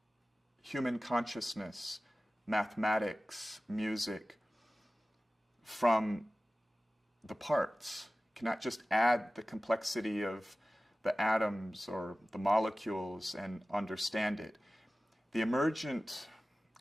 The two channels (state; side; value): normal; both; correlation 0.96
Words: human consciousness, mathematics, music from the parts. You cannot just add the complexity of the atoms or the molecules and understand it. The emergent